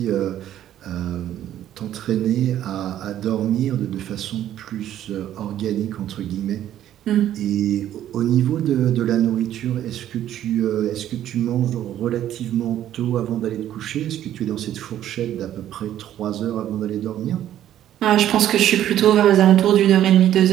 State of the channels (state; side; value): quieter; left; 11.7 dB